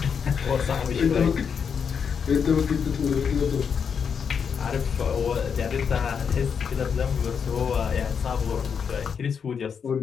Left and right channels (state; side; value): quieter; right; 6.7 dB